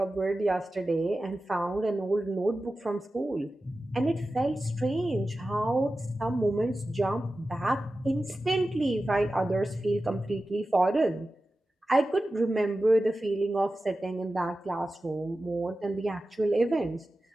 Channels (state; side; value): normal; both; correlation 0.94